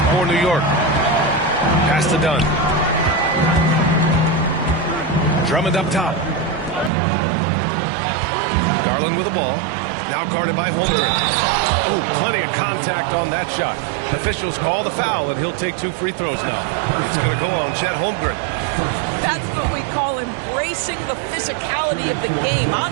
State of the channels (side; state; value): left; drops out; at 6.9 s